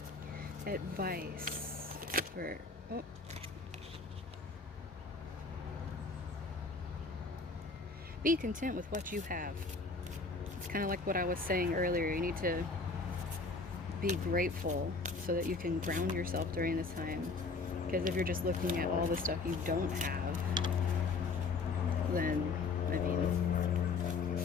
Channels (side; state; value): right; quieter; 4.1 dB